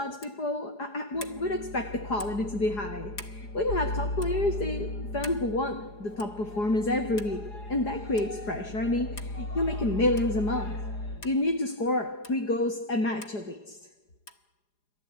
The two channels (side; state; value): right; late; 4.8 ms